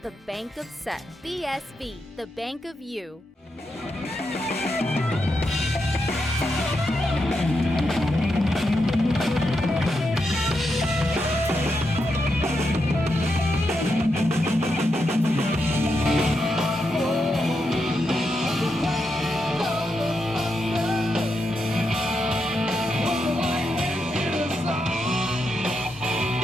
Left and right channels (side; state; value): both; normal; correlation 0.84